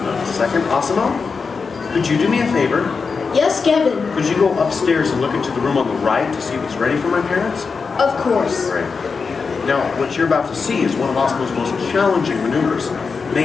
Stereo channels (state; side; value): quieter; right; 5.0 dB